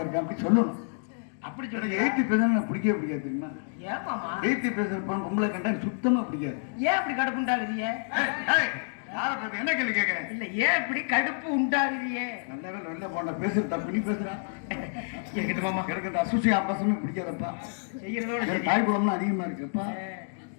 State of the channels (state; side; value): silent; right; digital silence